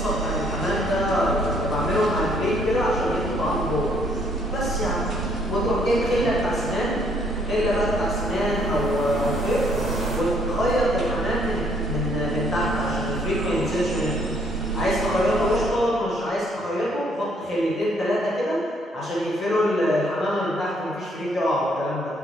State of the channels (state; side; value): normal; both; correlation 0.66